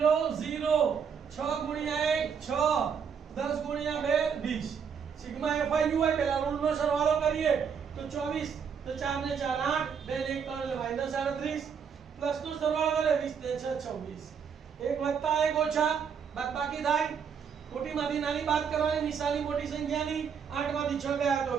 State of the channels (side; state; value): left; quieter; 6.9 dB